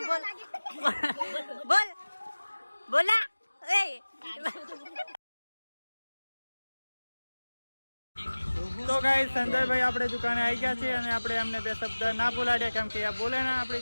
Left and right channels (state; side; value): inverted; both; correlation -1.00